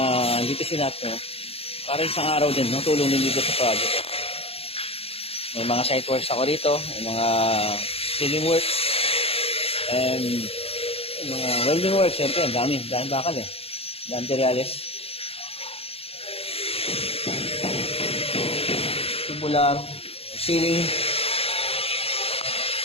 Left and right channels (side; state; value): right; late; 0.28 ms